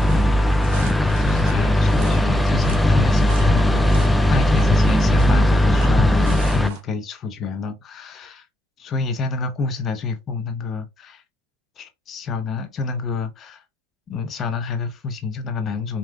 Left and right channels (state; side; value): normal; both; correlation 0.82